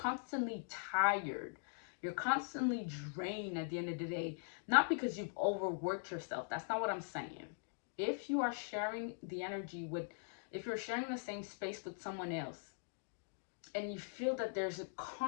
tired, you're constantly drained at the end of the day, not because you've overworked yourself. That's not what I'm saying. If you are sharing the energy with, if you're sharing the same space with someone else, and you feel that there's a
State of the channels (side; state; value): right; silent; digital silence